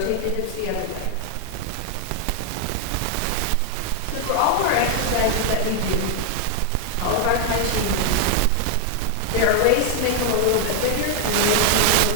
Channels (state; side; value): different; both; correlation 0.00